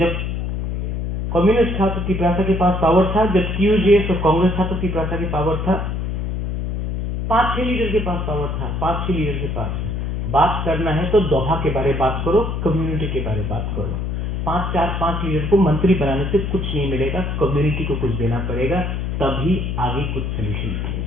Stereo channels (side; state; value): left; noise; hum, 2 dB below the sound